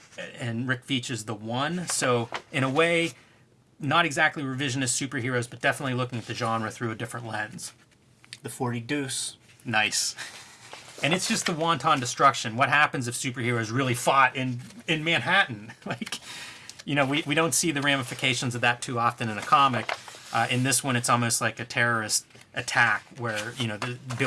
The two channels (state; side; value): identical; both; correlation 1.00